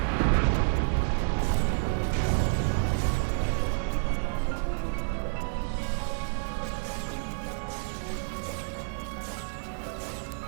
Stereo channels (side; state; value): left; silent; digital silence